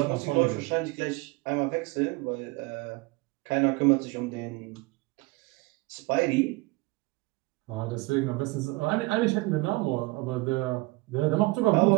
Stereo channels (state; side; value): quieter; left; 23.2 dB